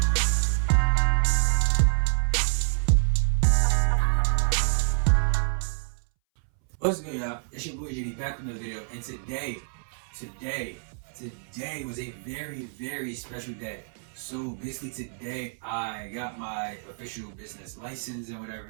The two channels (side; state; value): left; silent; 60 dB below the other